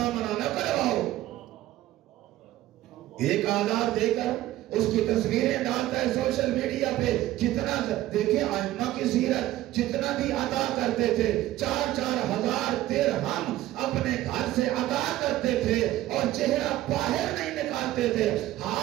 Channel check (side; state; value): left; quieter; 15.0 dB